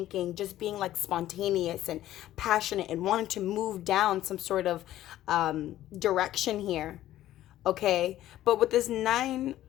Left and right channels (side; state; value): right; quieter; 13.6 dB